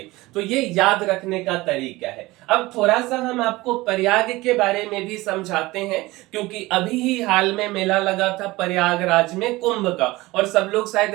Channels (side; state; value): left; quieter; 20.1 dB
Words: तो ये याद रखने का तरीका है। अब थोड़ा सा हम आपको प्रयाग के बारे में भी समझाते हैं, क्योंकि अभी ही हाल में मेला लगा था प्रयागराज में कुंभ का और सब लोग